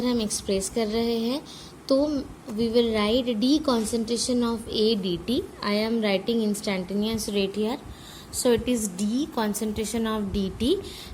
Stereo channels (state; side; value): identical; both; correlation 1.00